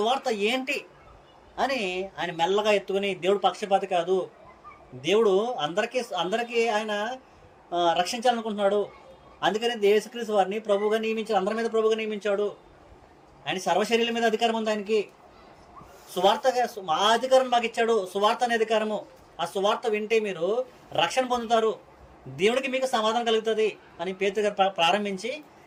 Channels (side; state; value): both; identical; correlation 1.00